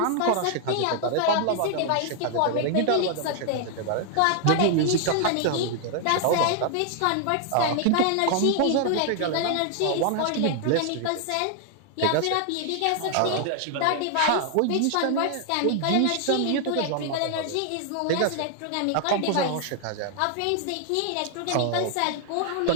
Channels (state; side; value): different; both; correlation 0.00